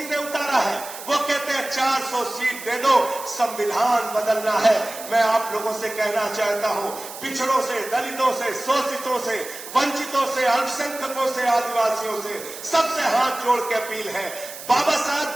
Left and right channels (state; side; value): noise; right; hiss, 12 dB below the sound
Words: ने उतारा है, वो कहते हैं 400 सीट दे दो, संविधान बदलना है। मैं आप लोगों से कहना चाहता हूं, पिछड़ों से, दलितों से, शोषितों से, वंचितों से, अल्पसंख्यकों से, आदिवासियों से, सबसे हाथ जोड़ के अपील है, बाबा साहब